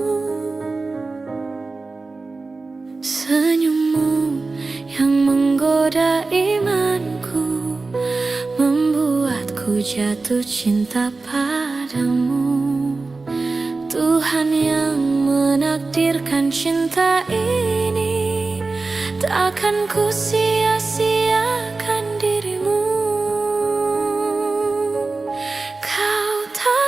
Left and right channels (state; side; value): quieter; left; 3.7 dB